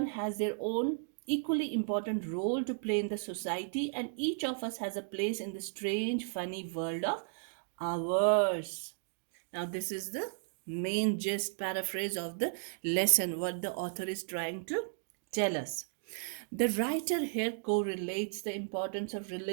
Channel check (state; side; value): silent; left; digital silence